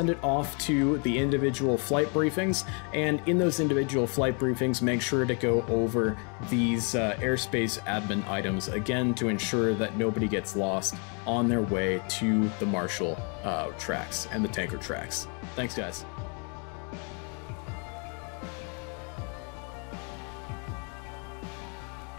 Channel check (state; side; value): quieter; right; 36.6 dB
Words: it off to the individual flight briefings. And in those individual flight briefings, make sure to go over these airspace admin items again to ensure that nobody gets lost on their way to the Marshall tracks and the tanker tracks. Thanks, guys.